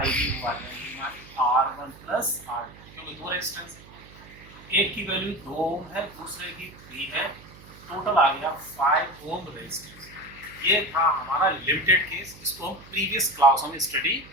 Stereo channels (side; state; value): right; noise; hum, 21 dB below the sound